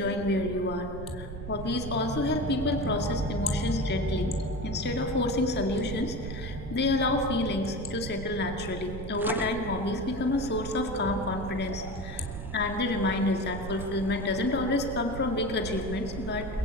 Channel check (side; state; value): right; noise; rumble, 8 dB below the sound